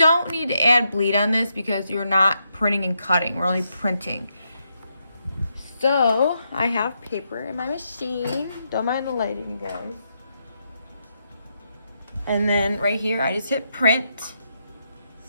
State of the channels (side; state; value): both; inverted; correlation -0.81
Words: need to add bleed on this because you're not printing and cutting. We're only printing. So I have paper in my machine. Don't mind the lighting, you guys. And then right here, I just hit print.